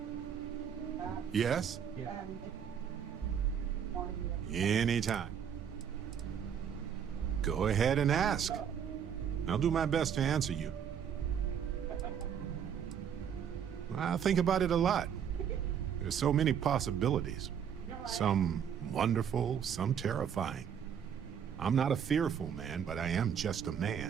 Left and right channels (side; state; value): left; quieter; 8.2 dB